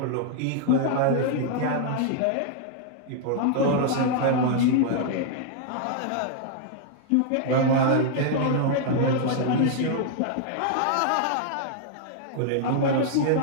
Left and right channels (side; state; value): both; different; correlation -0.01